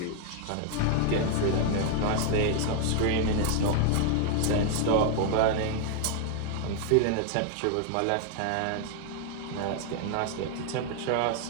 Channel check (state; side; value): different; both; correlation 0.00